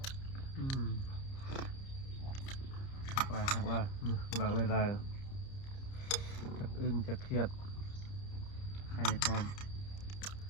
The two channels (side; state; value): right; late; 30 ms